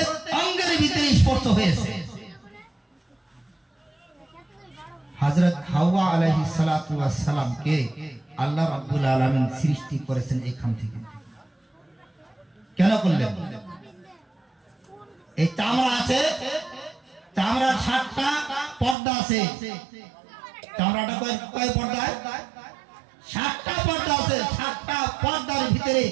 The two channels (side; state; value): left; drops out; at 18.9 s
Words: অঙ্গের ভিতরে স্পর্শ হয়েছে। হযরত হাওয়া আলাইহিস সালাতু ওয়াস সালামকে আল্লাহ রাব্বুল আলামিন সৃষ্টি করেছেন এখান থেকে। কেন করলেন? এই চামড়া আছে, চামড়ার 7টা পর্দা আছে। চামড়াটা কয় পর্দায়? 7টা পর্দা আছে। 7টা পর্দার ভিতরে